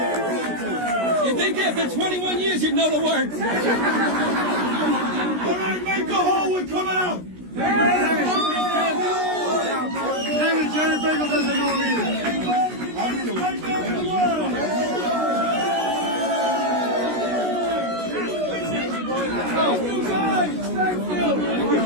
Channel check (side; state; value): left; late; 16 ms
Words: You think after 21 years you'd know the words? All right, make the hole, we're coming out. Kevin, Jerry Bagel doesn't know him either. Thank